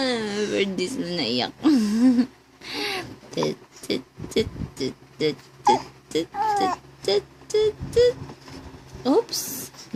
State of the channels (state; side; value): identical; both; correlation 1.00